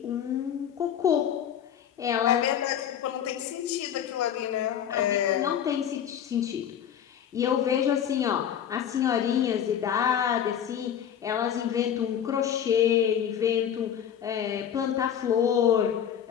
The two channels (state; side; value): quieter; right; 9.2 dB